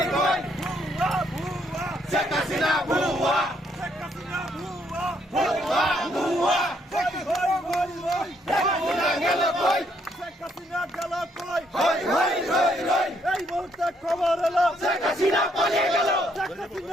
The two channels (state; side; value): normal; both; correlation 0.71